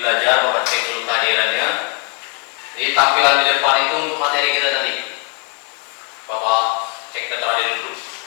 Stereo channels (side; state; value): right; quieter; 30.2 dB